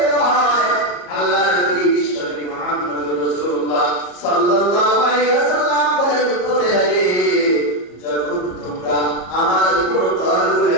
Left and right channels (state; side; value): late; right; 34 ms